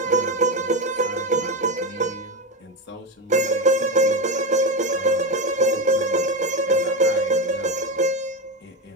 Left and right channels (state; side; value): normal; both; correlation 0.16